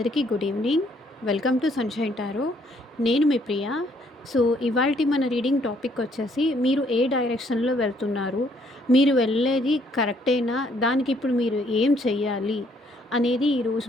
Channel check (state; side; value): normal; both; correlation 0.67